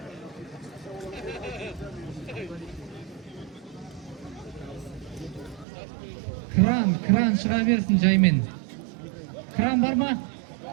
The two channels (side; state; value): left; drops out; at 5.7 s